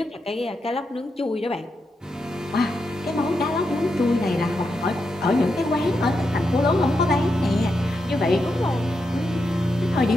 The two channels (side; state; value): both; normal; correlation 0.85